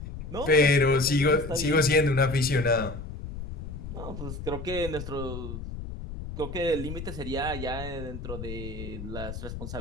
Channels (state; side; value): noise; left; rumble, 8 dB below the sound